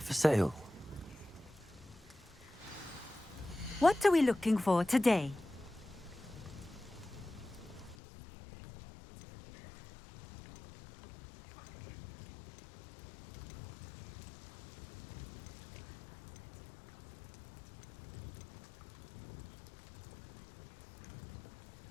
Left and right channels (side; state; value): right; drops out; at 8.0 s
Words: for sale? What are we looking for today?